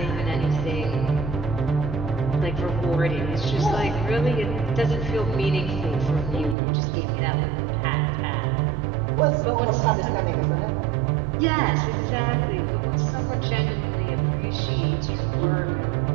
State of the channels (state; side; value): drops out; left; at 6.6 s